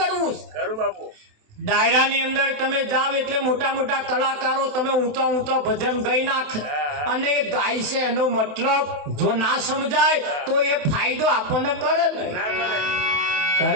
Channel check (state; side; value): late; left; 27 ms